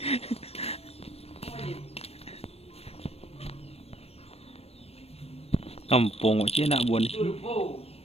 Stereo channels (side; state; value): right; late; 0.29 ms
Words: Kampung cik anak buah ni. Turbo.